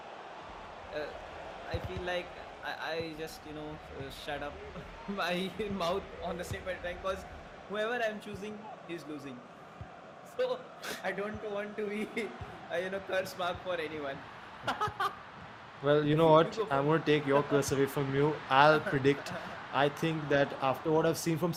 uh, I feel like I just shut up my mouth on the same point of time, because whoever I'm choosing is losing. So I don't want to be curse mark for anyone. Well, you know You what? go I'm first. going to take your curse away from you. I'll predict. I think that after what I've seen from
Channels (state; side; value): identical; both; correlation 1.00